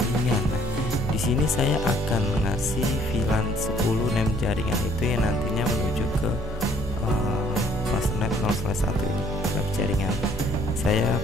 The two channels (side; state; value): both; normal; correlation 0.64